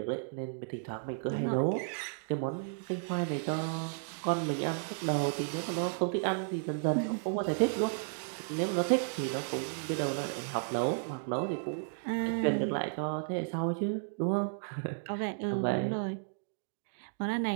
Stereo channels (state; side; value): silent; left; digital silence